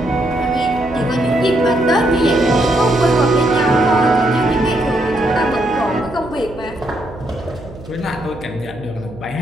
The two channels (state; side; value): noise; right; hum, 17 dB below the sound